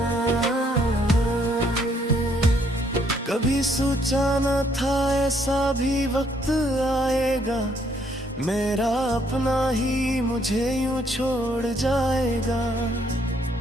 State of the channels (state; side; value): normal; both; correlation 0.69